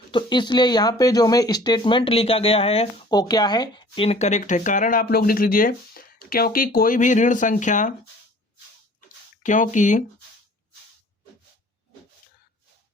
तो इसलिए यहाँ पे जो हमें स्टेटमेंट लिखा गया है वो क्या है, इनकरेक्ट है। कारण आप लोग लिख लीजिए, क्योंकि कोई भी ऋण संख्या, क्योंकि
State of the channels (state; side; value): normal; both; correlation 0.50